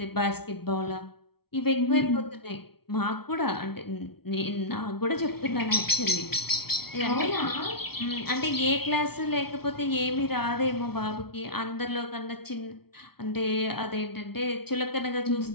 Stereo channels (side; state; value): right; late; 0.95 ms